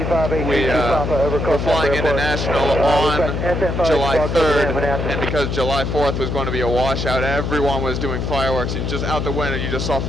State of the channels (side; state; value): left; noise; hum, 2 dB below the sound